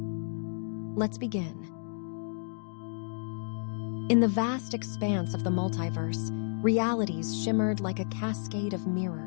Let's begin. In the vast expanse of the multiverse, realities shimmered like a cascade of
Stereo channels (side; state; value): right; silent; digital silence